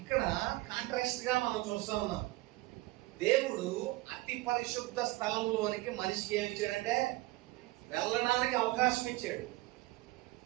కాంట్రాస్ట్ గా మనం చూస్తా ఉన్నాం. దేవుడు అతి పరిశుద్ధ స్థలంలోనికి మనిషికి ఏమి ఇచ్చాడంటే వెళ్ళడానికి అవకాశం ఇచ్చాడు.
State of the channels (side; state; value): left; quieter; 20.1 dB